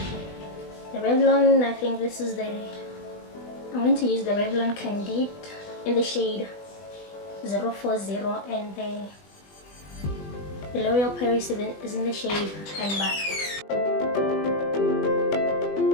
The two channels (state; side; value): late; right; 20 ms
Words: The Revlon, I think this is I'm going to use the Revlon Candide in the shade 040 and the L'Oreal Paris is in the shade Amber.